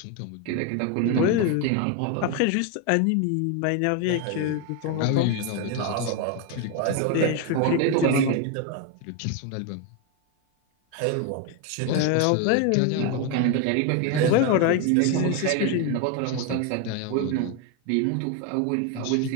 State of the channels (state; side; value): different; both; correlation 0.01